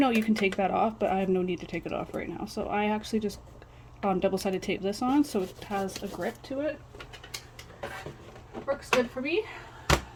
you can take that off, but I have no need to take it off right now. So I actually just double-sided tape this on so it has a grip to it. It works good for me.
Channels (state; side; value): identical; both; correlation 1.00